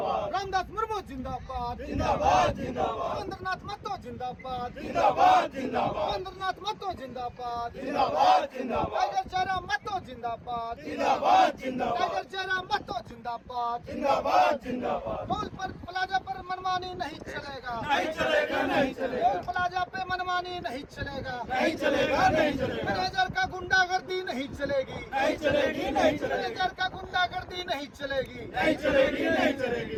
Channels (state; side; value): identical; both; correlation 1.00